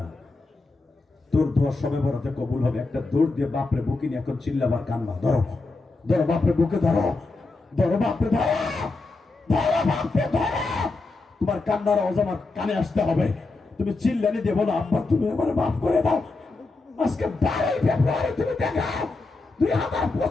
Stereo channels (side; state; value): right; quieter; 3.5 dB